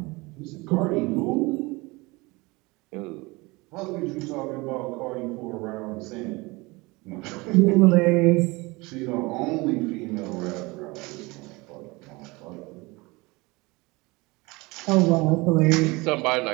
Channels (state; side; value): quieter; left; 24.0 dB